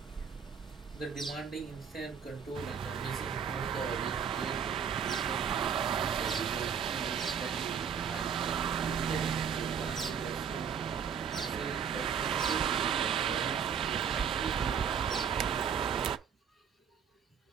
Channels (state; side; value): quieter; left; 7.4 dB